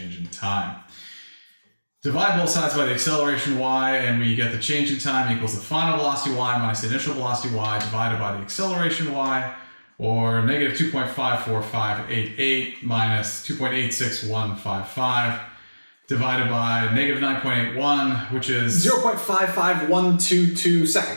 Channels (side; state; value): both; inverted; correlation -1.00